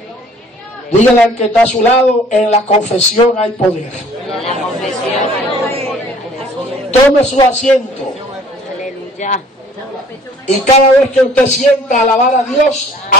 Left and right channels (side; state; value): both; normal; correlation 0.54